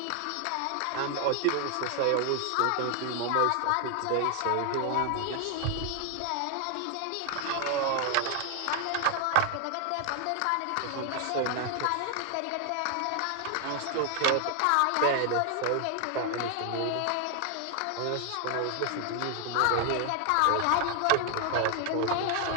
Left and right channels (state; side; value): different; both; correlation 0.00